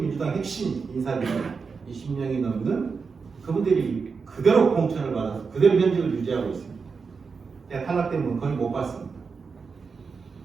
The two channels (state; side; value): quieter; left; 5.2 dB